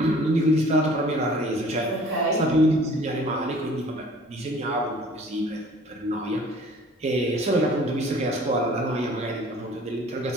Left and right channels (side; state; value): both; normal; correlation 0.51